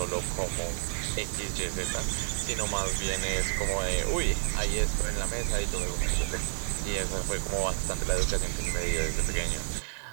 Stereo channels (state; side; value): silent; left; 58 dB below the other